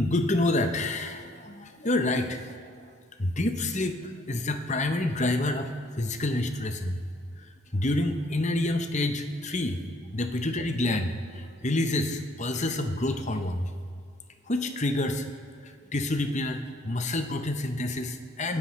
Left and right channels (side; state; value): both; normal; correlation 0.65